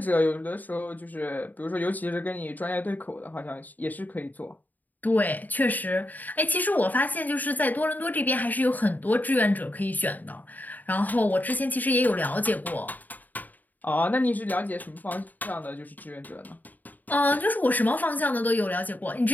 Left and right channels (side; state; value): right; late; 0.083 ms